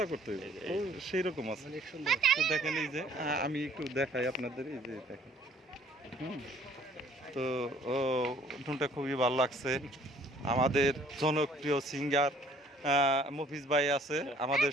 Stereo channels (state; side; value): normal; both; correlation 0.58